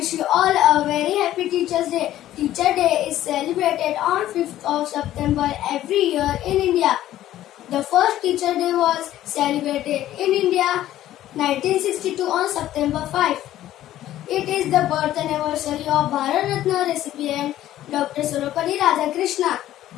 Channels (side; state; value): right; quieter; 13.4 dB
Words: you all a very happy Teachers Day. Teacher Day is celebrated on 5th of September every year in India. The first Teacher Day was celebrated in India 1962 on September 5. It is the birth anniversary of Bharat Ratna recipient Dr. Sarvepalli Radhakrishna.